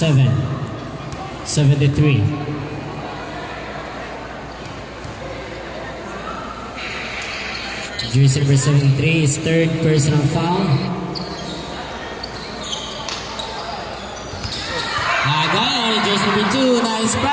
Jersey number 73 is third personal foul. Again, jersey number 2, nice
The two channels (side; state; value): both; identical; correlation 1.00